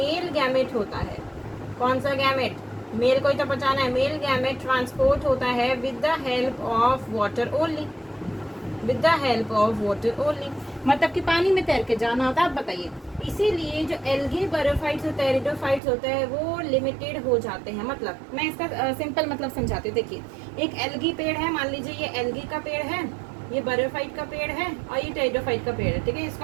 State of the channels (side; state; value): left; drops out; at 15.8 s